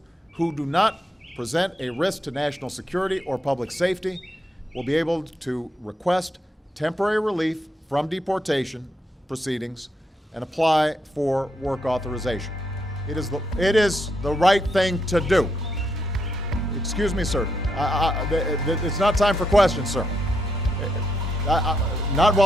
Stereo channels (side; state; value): both; normal; correlation 0.79